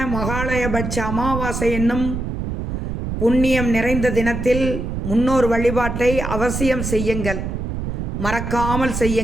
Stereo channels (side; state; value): right; noise; rumble, 3 dB below the sound